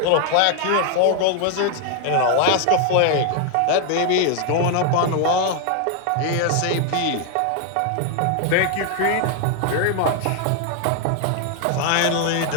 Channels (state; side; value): different; both; correlation 0.01